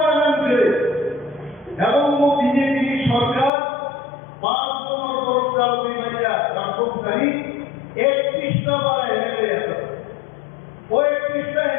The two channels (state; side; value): drops out; right; at 3.5 s